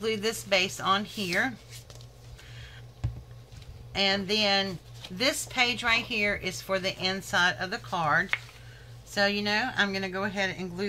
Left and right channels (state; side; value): identical; both; correlation 1.00